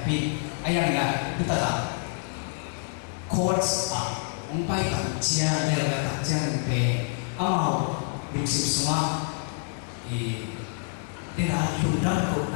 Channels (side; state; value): right; silent; 60 dB below the other